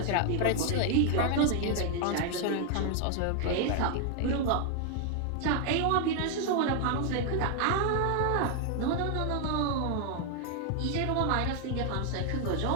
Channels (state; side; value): different; both; correlation 0.00